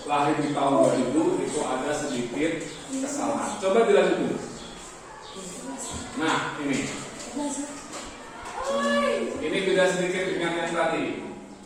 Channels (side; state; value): both; identical; correlation 1.00